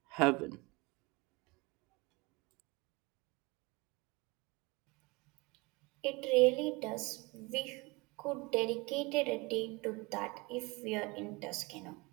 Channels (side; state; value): left; quieter; 25.5 dB